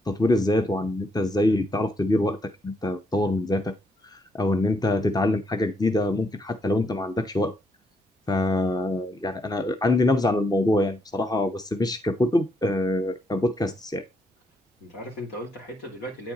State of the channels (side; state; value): both; normal; correlation 0.76